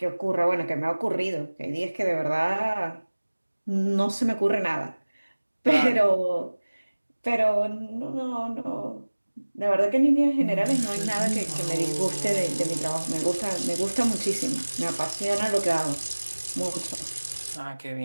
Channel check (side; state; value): both; inverted; correlation -1.00